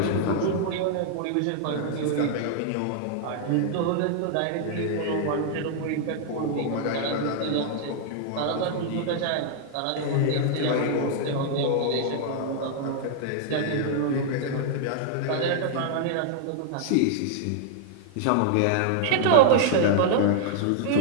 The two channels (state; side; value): different; both; correlation -0.01